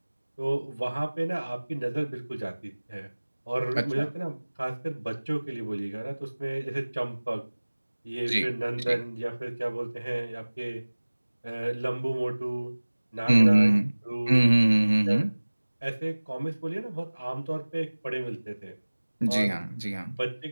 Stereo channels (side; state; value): both; inverted; correlation -1.00